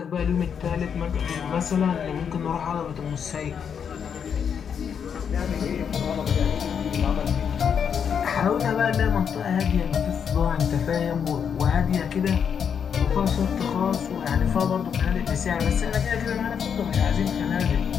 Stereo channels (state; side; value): quieter; right; 7.4 dB